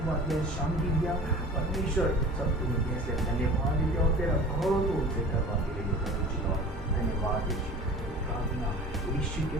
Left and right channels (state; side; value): normal; both; correlation 0.40